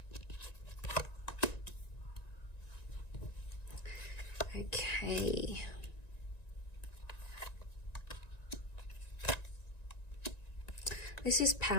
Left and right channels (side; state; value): right; late; 1.9 ms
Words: Okay. This is